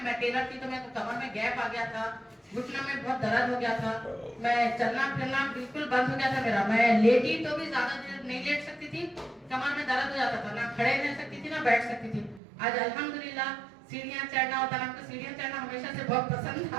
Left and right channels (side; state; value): left; drops out; at 12.4 s